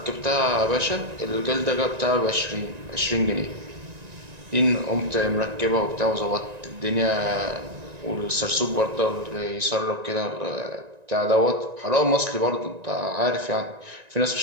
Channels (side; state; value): left; late; 1.9 ms